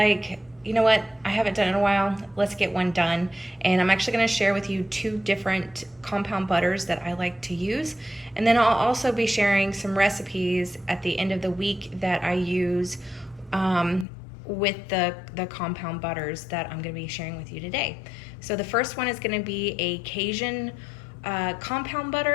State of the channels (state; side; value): drops out; right; at 14.1 s